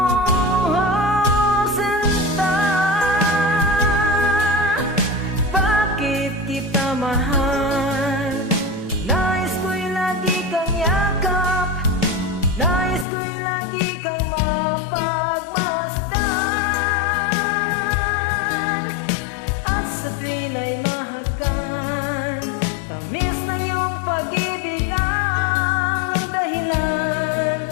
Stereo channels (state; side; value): drops out; right; at 13.1 s